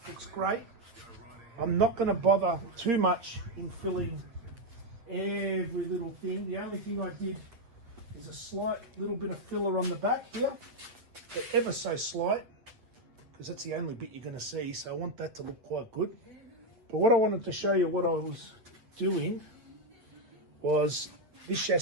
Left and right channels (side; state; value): left; late; 8.5 ms